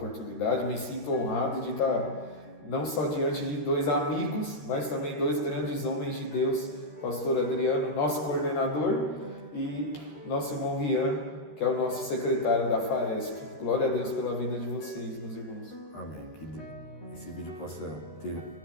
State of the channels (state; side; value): late; right; 13 ms